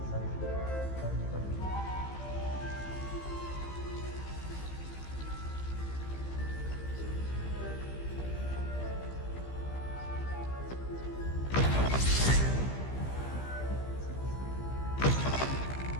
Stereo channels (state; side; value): late; right; 15 ms